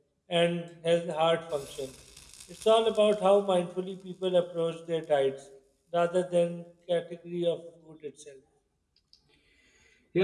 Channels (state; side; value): identical; both; correlation 1.00